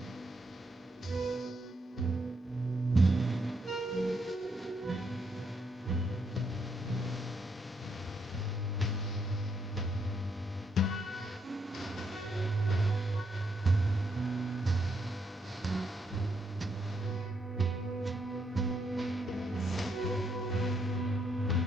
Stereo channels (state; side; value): normal; both; correlation 0.76